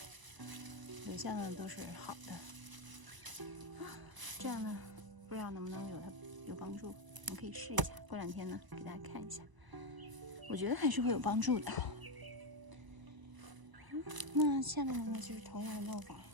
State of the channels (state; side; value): late; left; 1.0 ms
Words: 留下呢都是好的。这样呢不知道能不能有帮助，我们可以试一下，过2天呢给大家看一下，我觉得还是会有帮助的。那下面呢就是同样的弄法，